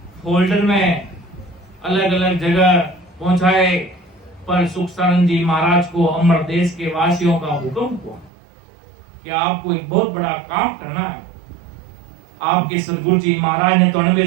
फोल्डर में अलग अलग जगह पहुंचाए, पर सुखसारण जी महाराज को अमर देश के वासियों का हुक्म हुआ कि आपको एक बहुत बड़ा काम करना है। आपके सदगुरु जी महाराज ने तो 98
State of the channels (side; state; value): left; drops out; at 8.3 s